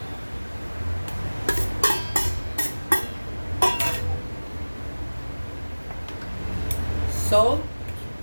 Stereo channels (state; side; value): inverted; both; correlation -1.00